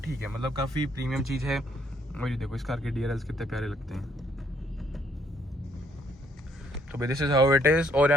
ठीक है, मतलब काफ़ी प्रीमियम चीज़ है। और ये देखो इस कार के DRLs कितने प्यारे लगते हैं। तो भाई this is how it is. और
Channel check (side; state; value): both; normal; correlation 0.68